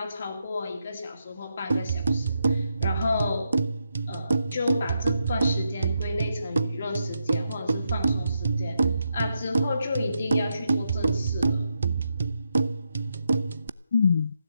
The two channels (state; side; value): inverted; both; correlation -0.83